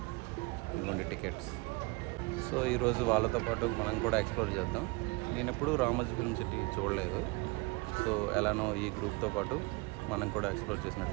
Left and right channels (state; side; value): quieter; left; 26.0 dB